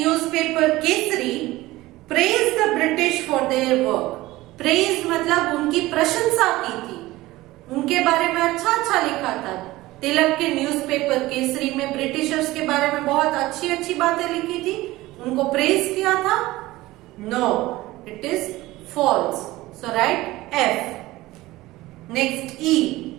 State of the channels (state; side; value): quieter; left; 18.3 dB